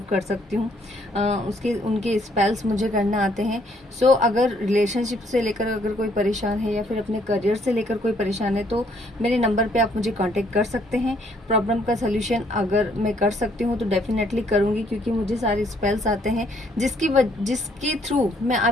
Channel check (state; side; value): normal; both; correlation 0.67